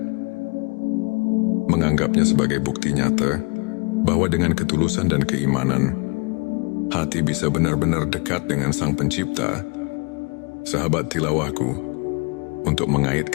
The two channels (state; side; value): quieter; right; 30.7 dB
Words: menganggapnya sebagai bukti nyata bahwa dengan ketulusan dan keimanan, hati bisa benar-benar dekat dengan Sang Pencipta. Sahabat tilawahku, untuk